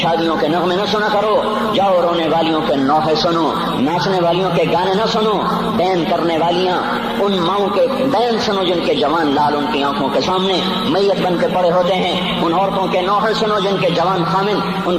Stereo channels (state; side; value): identical; both; correlation 1.00